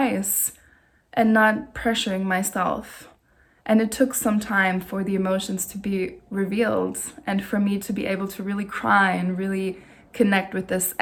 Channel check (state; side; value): identical; both; correlation 1.00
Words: and not pressuring myself. And it took some time for the emotions to be revealed and for me to be able to really cry and really connect with this